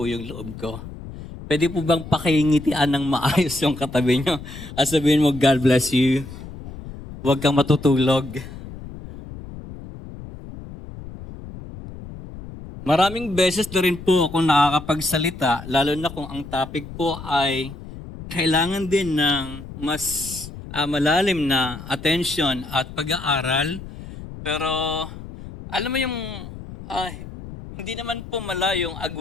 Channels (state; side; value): noise; left; rumble, 13 dB below the sound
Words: yung loob ko. Pwede po bang pakingitian ng maayos yung katabi nyo? At sabihin mo, God bless you. Huwag kang matutulog. Maraming beses na rin po ako nakakapagsalita, lalo na kung ang topic po ay kailangan din ng mas malalim na attention at pag-aaral. Pero alam mo yung hindi naman po malayong